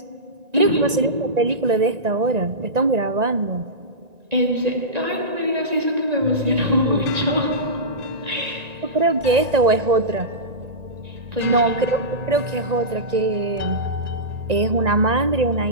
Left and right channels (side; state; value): left; late; 1.9 ms